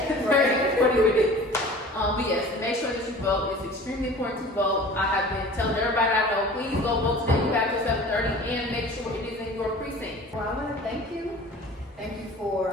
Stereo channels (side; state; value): both; normal; correlation 0.42